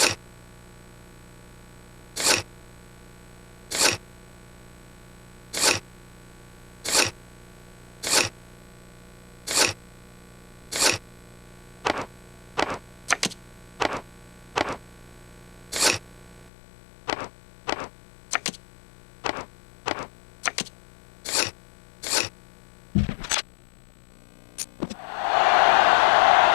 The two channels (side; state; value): right; drops out; at 16.5 s